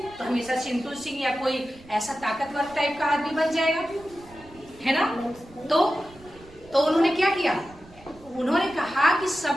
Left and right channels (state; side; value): noise; right; rumble, 23 dB below the sound